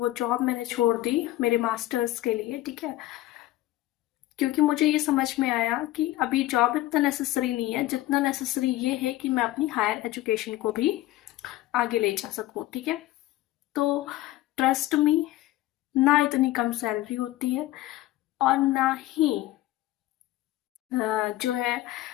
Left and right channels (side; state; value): right; quieter; 15.9 dB